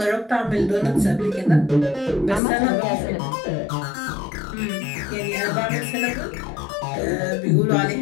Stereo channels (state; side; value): drops out; right; at 2.4 s